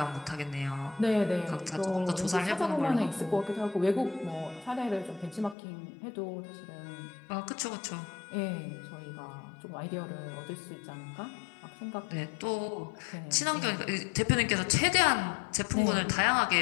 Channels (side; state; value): right; drops out; at 5.6 s